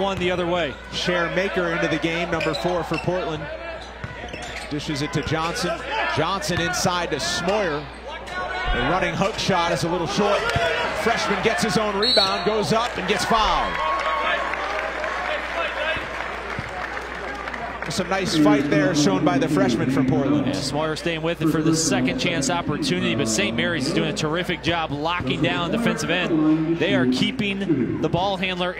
the other way. Cher Maker into the game, number 4 for Portland. Dishes it to Johnson. Johnson inside to Smoyer. The running hook shot is a little short. Freshman gets his own rebound, goes up and gets fouled. Some nice fight there shown by the freshman from Portland. Yeah, Smoyer staying with it for the second chance opportunity, but St. Mary's is doing a terrific job locking down defensive end. They are keeping the ball handler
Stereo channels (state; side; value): identical; both; correlation 1.00